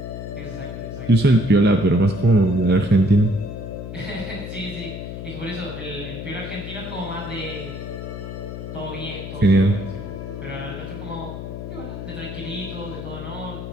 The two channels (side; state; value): left; noise; hum, 8 dB below the sound